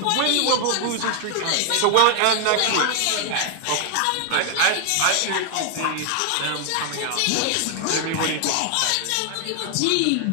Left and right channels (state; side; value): different; both; correlation 0.00